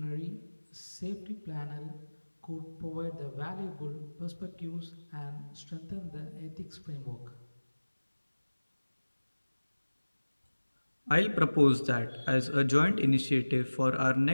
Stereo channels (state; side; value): inverted; both; correlation -1.00